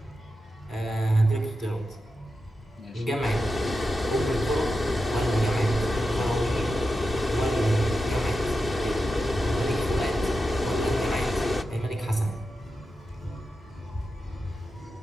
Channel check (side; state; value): both; normal; correlation 0.90